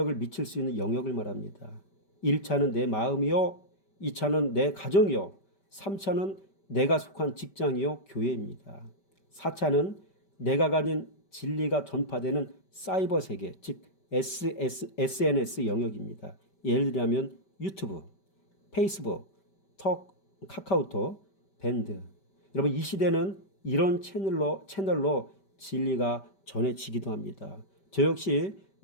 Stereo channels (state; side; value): late; right; 5.2 ms